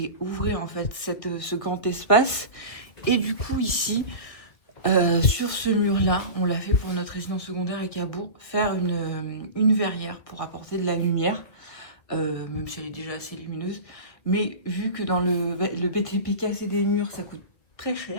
en fait ce grand espace. Et du coup ici, sur ce mur-là, on l'a fait pour notre résidence secondaire à Cabourg, faire une verrière pour apporter de la lumière, même si elle est déjà assez lumineuse. Mais vu que dans le BTP, casser des murs, ça coûte très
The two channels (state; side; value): late; right; 1.6 ms